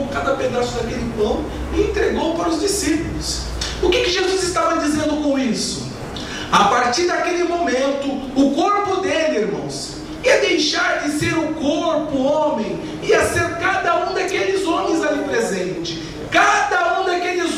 cada pedaço daquele pão e entregou para os discípulos. O que Jesus estava dizendo com isso? A partir daquele momento, o corpo dele, irmãos, ia deixar de ser o corpo homem, ia ser cada um daqueles homens ali presente. Cada um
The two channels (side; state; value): both; identical; correlation 1.00